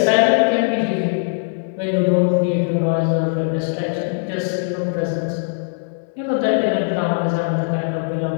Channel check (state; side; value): silent; right; 66 dB below the other